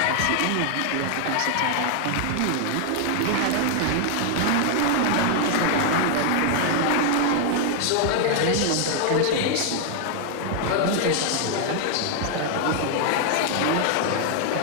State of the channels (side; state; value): both; different; correlation 0.00